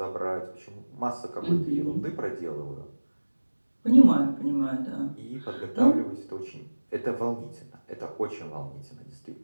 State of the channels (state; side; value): inverted; both; correlation -1.00